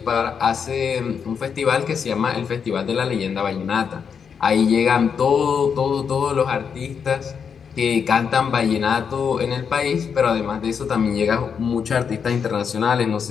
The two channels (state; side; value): quieter; right; 6.7 dB